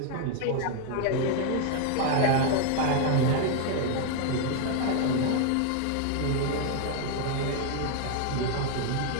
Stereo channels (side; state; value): both; different; correlation 0.00